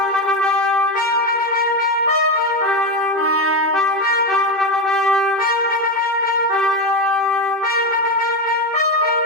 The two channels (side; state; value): right; late; 2.6 ms